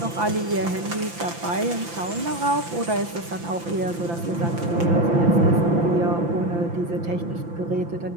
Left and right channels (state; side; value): late; left; 5.9 ms